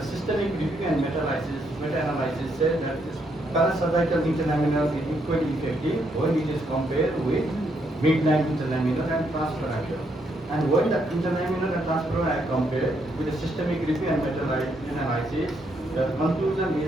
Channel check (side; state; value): both; normal; correlation 0.75